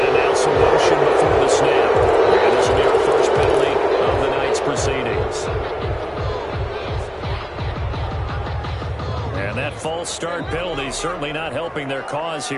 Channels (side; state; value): both; identical; correlation 1.00